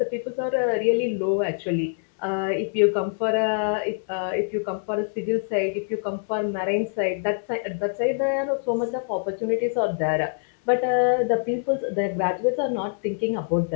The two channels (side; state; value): right; silent; 62 dB below the other